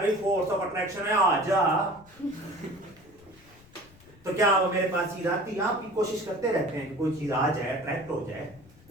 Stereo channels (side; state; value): left; noise; rumble, 26 dB below the sound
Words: फोर्स ऑफ अट्रैक्शन है आ जा, तो क्या वो मेरे पास चीज आती? आप भी कोशिश करते रहते हैं कि कोई चीज आ जाए, अट्रैक्ट हो जाए,